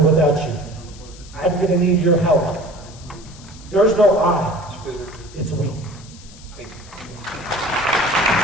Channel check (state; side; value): noise; left; hiss, 21 dB below the sound